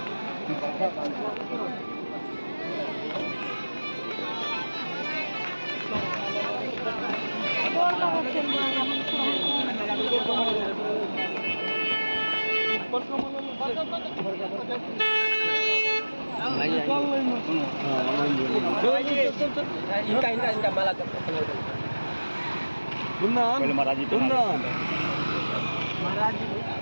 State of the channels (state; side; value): inverted; both; correlation -1.00